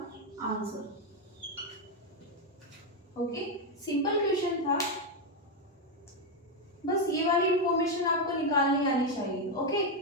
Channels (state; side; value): normal; both; correlation 0.05